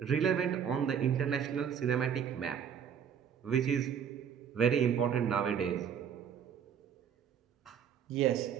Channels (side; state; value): left; quieter; 8.0 dB